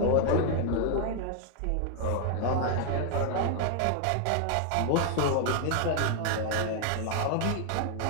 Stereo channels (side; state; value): both; different; correlation 0.00